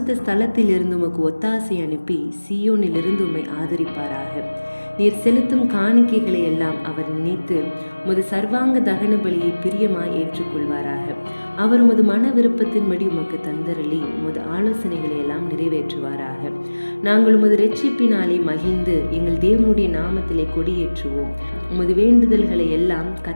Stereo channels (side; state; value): both; inverted; correlation -1.00